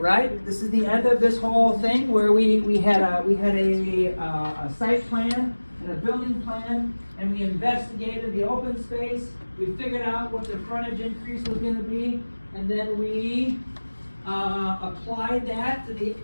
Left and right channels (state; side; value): inverted; both; correlation -1.00